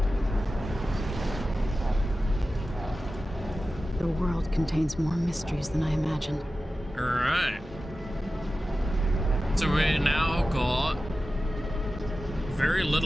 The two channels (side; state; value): both; normal; correlation 0.94